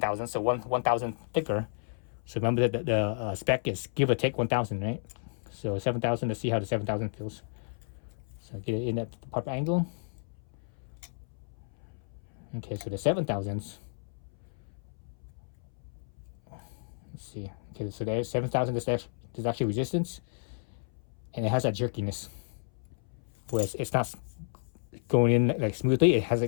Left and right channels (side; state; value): right; silent; 57 dB below the other